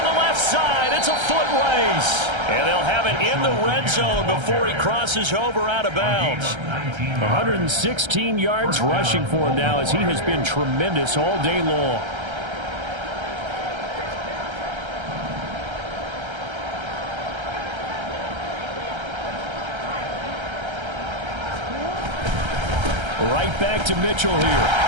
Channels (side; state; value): left; late; 1.3 ms